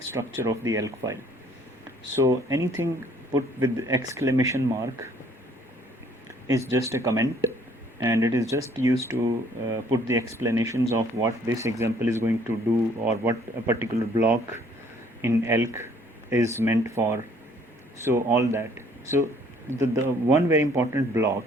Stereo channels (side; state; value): both; normal; correlation 0.60